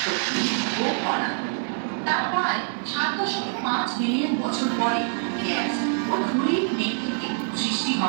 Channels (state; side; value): silent; left; digital silence